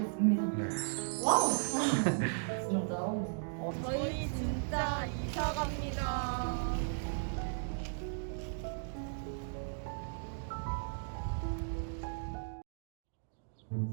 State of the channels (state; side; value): silent; left; digital silence